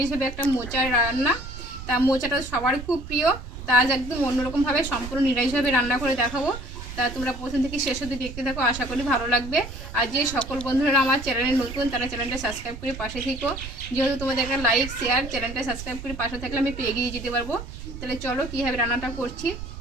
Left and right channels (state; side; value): noise; right; rumble, 11 dB below the sound